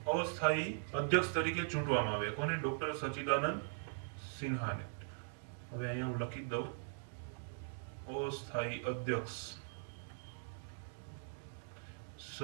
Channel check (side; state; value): left; silent; digital silence